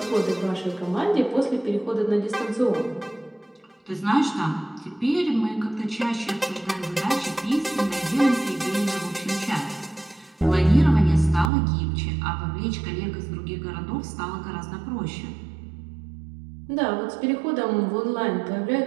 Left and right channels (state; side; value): drops out; left; at 11.5 s